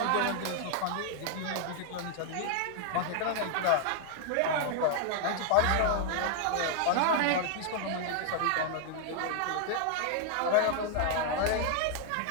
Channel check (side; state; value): both; different; correlation 0.00